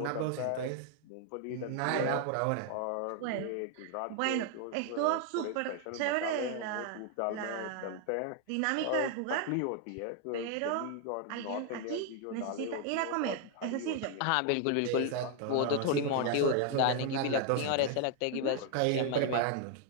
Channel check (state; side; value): different; both; correlation 0.00